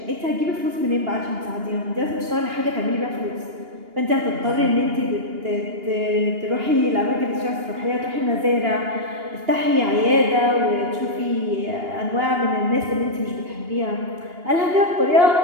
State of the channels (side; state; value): left; late; 2.8 ms